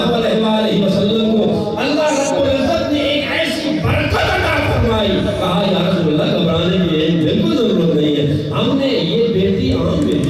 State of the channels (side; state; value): both; identical; correlation 1.00